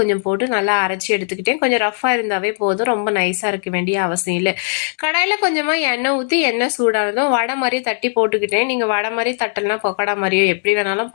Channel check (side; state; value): right; silent; digital silence